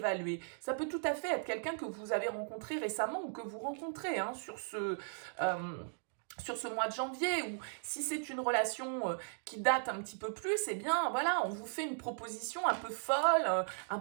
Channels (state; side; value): silent; left; digital silence